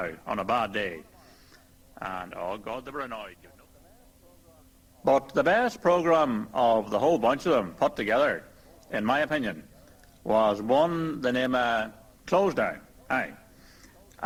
on a bad day. And oh God, they were annoyed. But the best programme of the whole bunch of them put together, in my opinion, was one the name of Closedown. Aye.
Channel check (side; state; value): both; identical; correlation 1.00